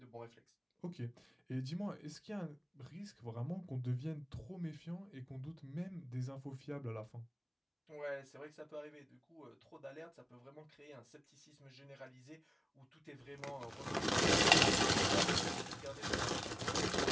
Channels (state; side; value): identical; both; correlation 1.00